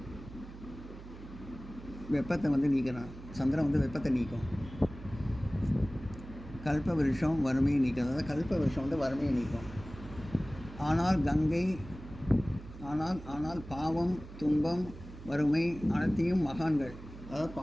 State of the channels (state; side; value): noise; right; hum, 15 dB below the sound